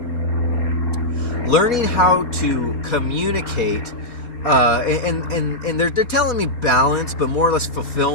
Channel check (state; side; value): late; right; 4.3 ms